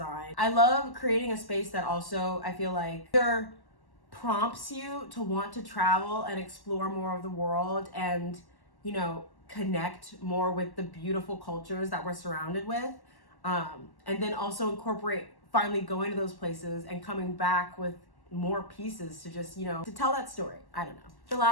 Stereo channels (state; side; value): late; right; 1.1 ms